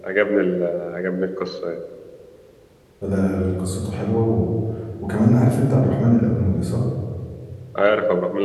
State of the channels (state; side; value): identical; both; correlation 1.00